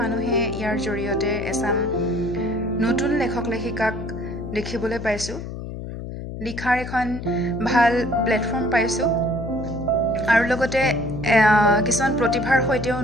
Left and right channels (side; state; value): left; noise; hum, 8 dB below the sound